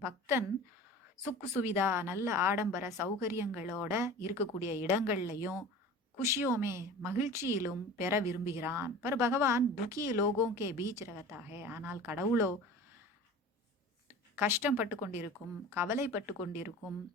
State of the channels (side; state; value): both; normal; correlation 0.38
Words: பக்தன் சுக்கு சுவிதா, நல்ல ஆடம்பர சௌகரியங்களோட இருக்கக்கூடிய இடங்கள்லையும் குஷியோமே மகிழ்ச்சியிலும் பெற விரும்புகிறான். பர் பகவான் துக்கி லோகோங்கே பீச் ரகத்தாக, ஆனால் கடவுளோ கஷ்டப்பட்டு கொண்டிருக்கும், கவலைப்பட்டு கொண்டிருக்கும்